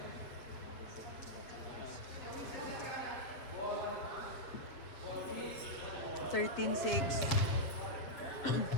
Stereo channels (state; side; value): late; right; 7.9 ms